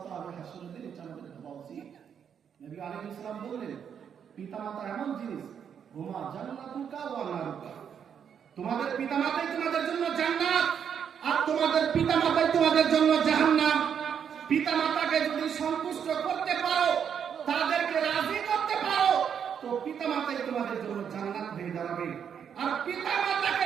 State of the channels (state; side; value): quieter; left; 7.9 dB